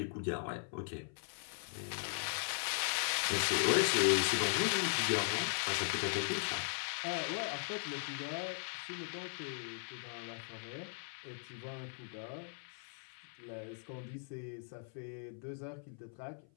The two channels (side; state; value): right; silent; 52 dB below the other